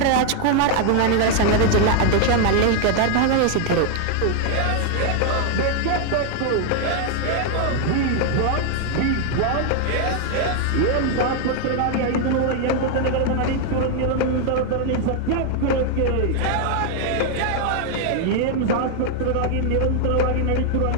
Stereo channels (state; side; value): different; both; correlation 0.00